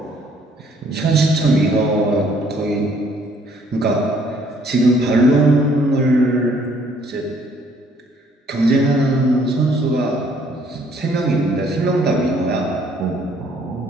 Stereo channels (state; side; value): normal; both; correlation 0.63